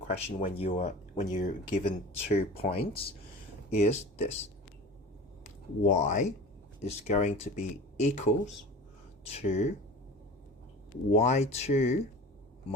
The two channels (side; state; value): both; normal; correlation 0.37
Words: question when you're given 2 points is this: y is going to be equals to y2